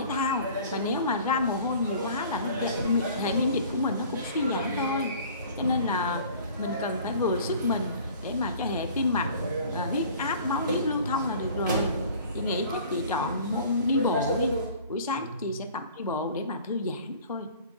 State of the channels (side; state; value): both; inverted; correlation -0.47